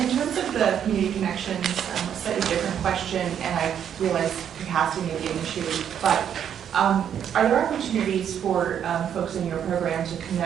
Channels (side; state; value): left; quieter; 9.0 dB